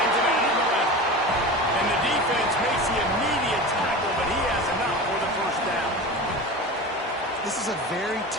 it out on the left. And the defense makes the immediate tackle, but he has enough for the first down. This is a very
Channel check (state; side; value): normal; both; correlation 0.30